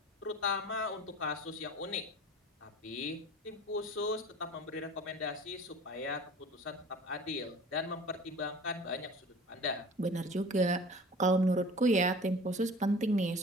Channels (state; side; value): normal; both; correlation 0.43